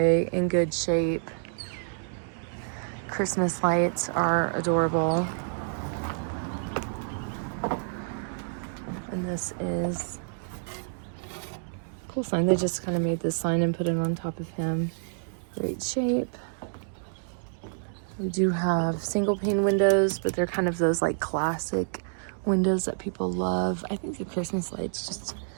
in good shape. Christmas lights are adorable. And this is a cool sign. They just kind of made this sign and put it on top of him. Great shape. We do have single pane windows, but they're kind of those like classic windows that people love. I think the Christmas lights just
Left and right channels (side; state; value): left; silent; digital silence